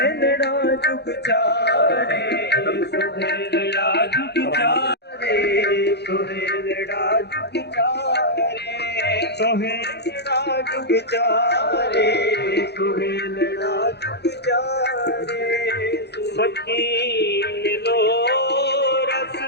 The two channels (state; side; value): late; right; 0.48 ms